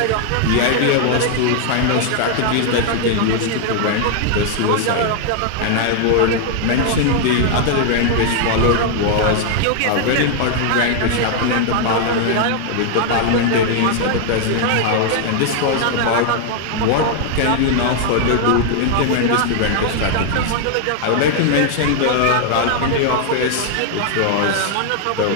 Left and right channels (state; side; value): different; both; correlation 0.00